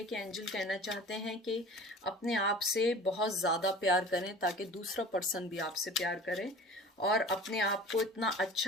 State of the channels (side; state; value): both; normal; correlation 0.41